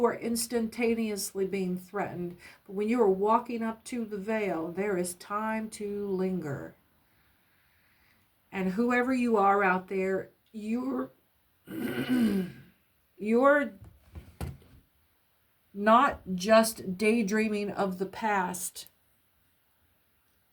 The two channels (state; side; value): identical; both; correlation 1.00